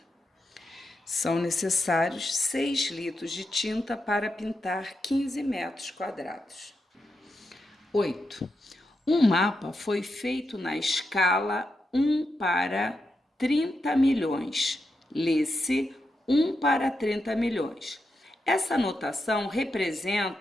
São necessários 6 litros de tinta para pintar 15 metros quadrados. 8. Um mapa foi feito na escala 1 para 30 milhões. Lê-se 1 para 30 milhões. Essa notação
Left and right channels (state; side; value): normal; both; correlation 0.86